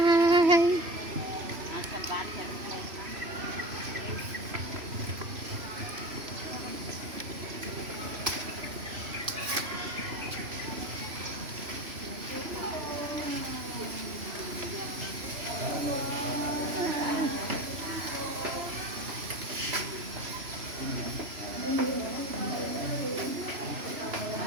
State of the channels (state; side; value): late; left; 3.0 ms